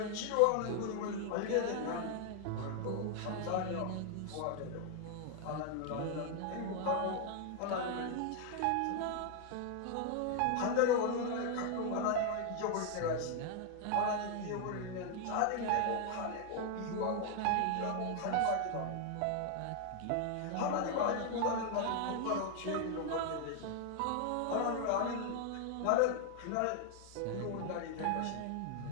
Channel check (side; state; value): both; different; correlation 0.00